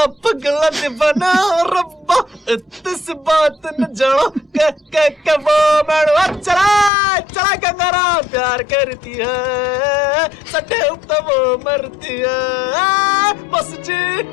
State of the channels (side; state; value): right; drops out; at 6.9 s